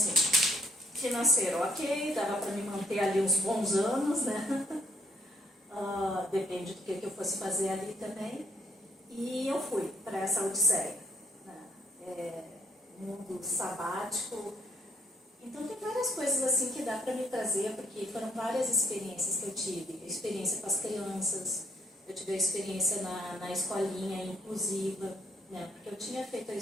financeiro ok, dava para me manter ali uns bons anos, né? Depende do que eu fosse fazer ali também. E eu fui para essa odisseia, né? mundo sabático. Então tem várias coisas assim que dá para me trazer, porque foram várias experiências que eu tive. A experiência com as crianças, eu tive a experiência na escolinha inclusiva, né? Porque eu tinha feito a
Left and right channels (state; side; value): normal; both; correlation 0.69